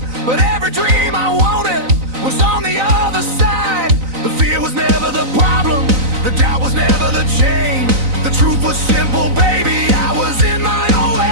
but every dream I wanted was on the other side. The fear was never the problem, the doubt was never the chain. The truth was simple, baby, I was in my own way.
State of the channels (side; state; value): left; late; 3.9 ms